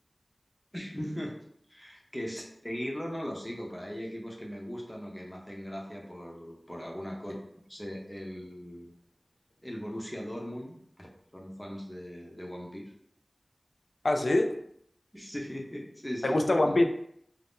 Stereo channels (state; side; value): normal; both; correlation 0.98